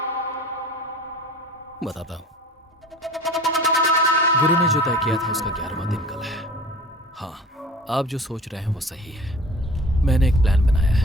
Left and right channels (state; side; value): normal; both; correlation 0.43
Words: बताता हूँ। गुरु ने जो तय किया था उसका 11वां दिन कल है। हाँ, आप जो सोच रहे हैं वो सही है। मैंने एक प्लान बनाया